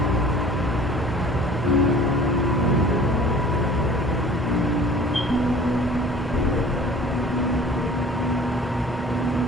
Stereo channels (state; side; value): normal; both; correlation 0.47